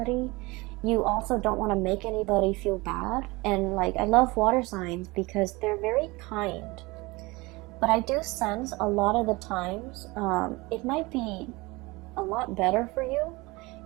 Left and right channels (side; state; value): left; quieter; 23.3 dB